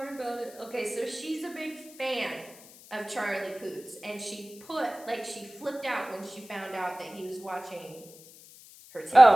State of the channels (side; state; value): left; noise; hiss, 21 dB below the sound